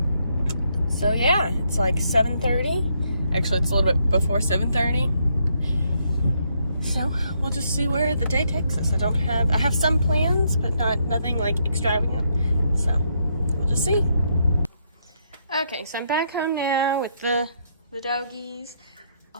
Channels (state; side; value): inverted; both; correlation -0.75